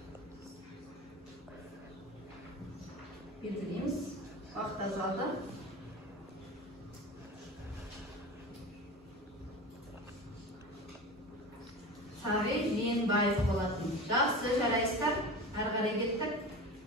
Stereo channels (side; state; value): both; normal; correlation 0.31